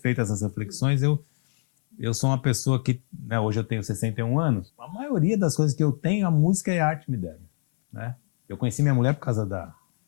essas reflexões, eu sou uma pessoa que, né, hoje eu tenho 61 anos, a maioria das coisas que eu tenho, a música e a arte me deram, né? Eu conheci minha mulher por causa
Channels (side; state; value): right; silent; 62 dB below the other